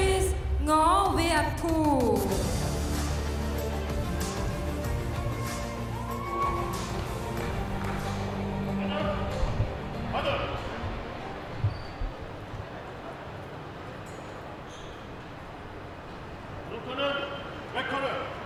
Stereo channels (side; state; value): both; identical; correlation 1.00